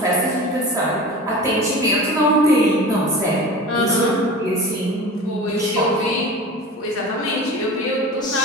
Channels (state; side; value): normal; both; correlation 0.35